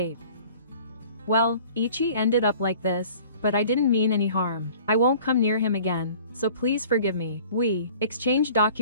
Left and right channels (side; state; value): both; inverted; correlation -0.48